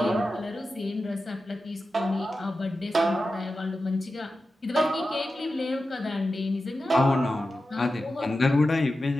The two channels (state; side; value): normal; both; correlation 0.92